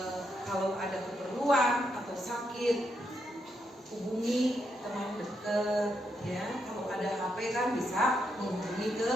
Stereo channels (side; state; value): both; normal; correlation 0.80